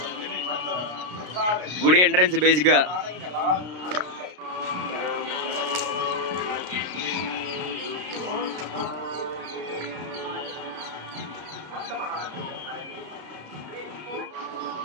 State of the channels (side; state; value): left; late; 33 ms